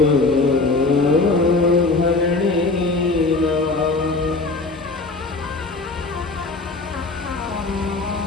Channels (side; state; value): right; quieter; 3.5 dB